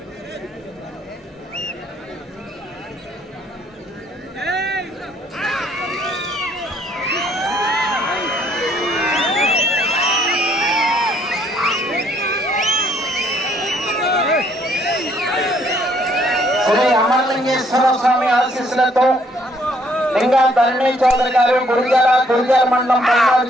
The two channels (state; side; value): normal; both; correlation 0.66